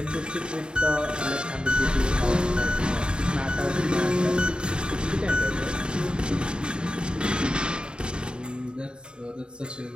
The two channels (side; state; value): left; late; 0.050 ms